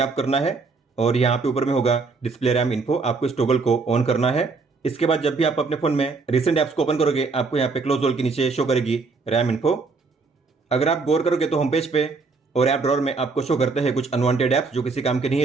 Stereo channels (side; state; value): left; quieter; 4.3 dB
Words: करना है, और यहाँ पे ऊपर में होगा डिस्प्ले रैम इन्फो, आपको इस टॉगल को ऑन करना है। इसके बाद जब भी आप अपने फोन में रिसेंट ऐप्स को ओपन करोगे, आपको यहाँ पे क्लोज ऑल के नीचे शो करेगी रैम इन्फो। अगर आप गौर करोगे तो होम पेज पे और ऐप ड्रॉअर में आपको शो करते हैं कुछ अनवांटेड ऐप्स जो किसी काम के नहीं